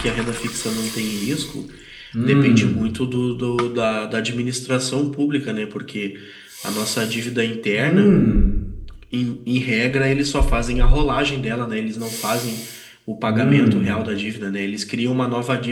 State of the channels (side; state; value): both; identical; correlation 1.00